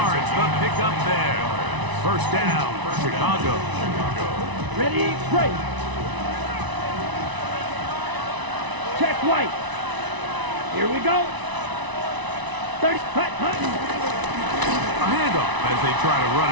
the pickup there. 1st down, Chicago. Ready, break. Check white. Here we go. 30, punt. A handoff as they try to run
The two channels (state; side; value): late; left; 1.0 ms